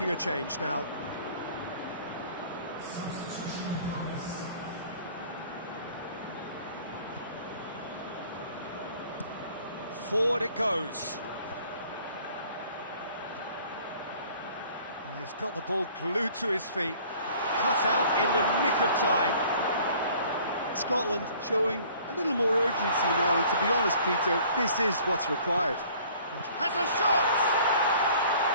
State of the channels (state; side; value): inverted; both; correlation -0.53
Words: a change now. Forward it goes. Well, he's got the ball glued to his feet. Cut out in the nick of time. Scotland showing a little more urgency now, and to be honest, Peter, this is what's required. Has a shot!